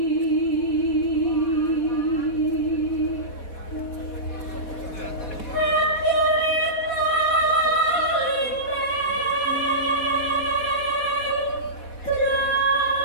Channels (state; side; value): late; right; 4.1 ms